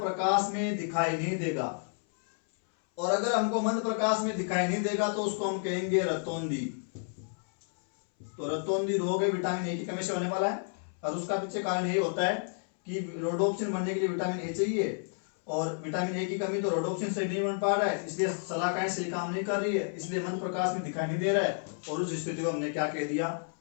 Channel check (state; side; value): silent; right; 57 dB below the other